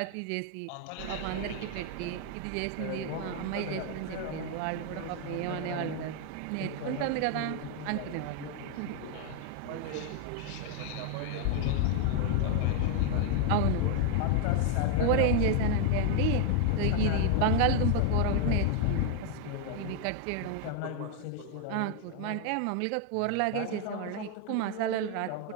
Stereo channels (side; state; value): both; different; correlation 0.00